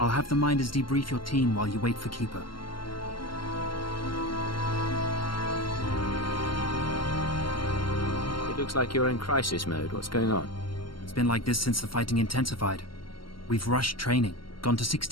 I'll have the Minders debrief your team while you wait for Keeper. It looks like you're in crisis mode. What's going on? It's been like this since the fighting intensified. We've rushed training, gone to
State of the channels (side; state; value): right; late; 0.73 ms